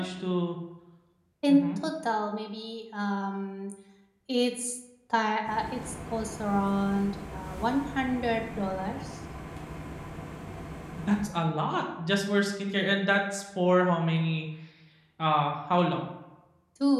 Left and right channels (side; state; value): both; identical; correlation 1.00